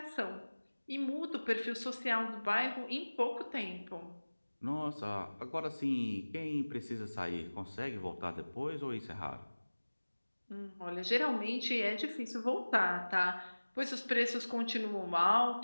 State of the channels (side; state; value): both; inverted; correlation -1.00